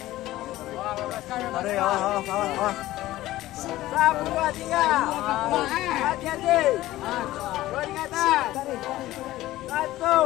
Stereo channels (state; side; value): quieter; right; 16.0 dB